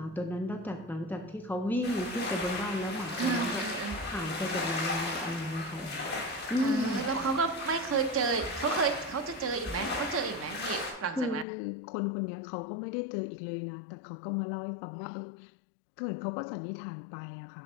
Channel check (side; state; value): right; drops out; at 11.5 s